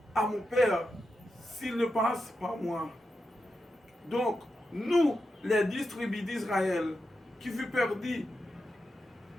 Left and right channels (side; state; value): both; normal; correlation 0.88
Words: à mon Père s'il ne passe par moi. Donc, nous, les 10 tribus d'Israël, qui furent perdus,